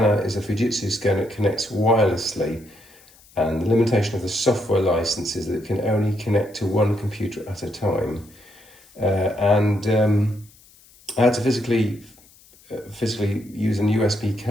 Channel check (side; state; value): left; noise; hiss, 27 dB below the sound